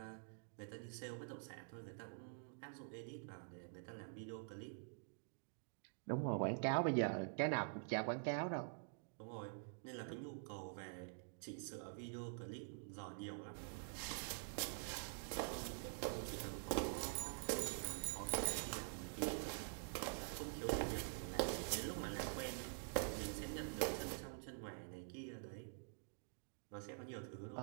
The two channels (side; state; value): left; silent; digital silence